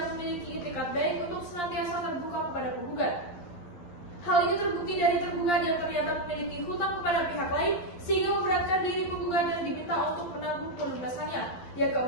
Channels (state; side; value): late; right; 11 ms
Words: memiliki itikat baik untuk senantiasa terbuka kepada penggugat. Hal ini terbukti dari tergugat yang ternyata memiliki hutang kepada pihak lain sehingga memberatkan diri penggugat yang diminta untuk menanggung pelunasannya. Yang